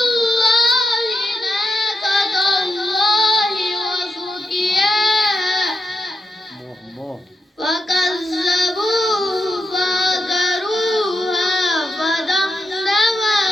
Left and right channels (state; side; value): normal; both; correlation 0.87